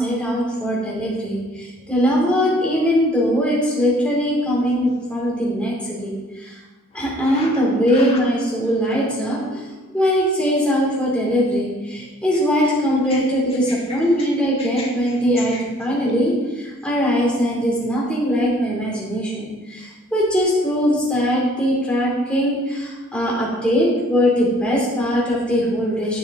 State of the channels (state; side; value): normal; both; correlation 0.57